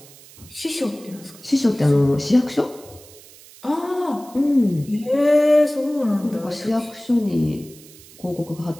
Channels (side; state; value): right; noise; hiss, 22 dB below the sound